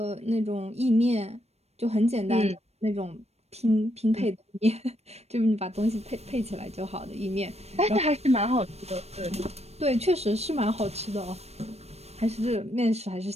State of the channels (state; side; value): late; left; 0.31 ms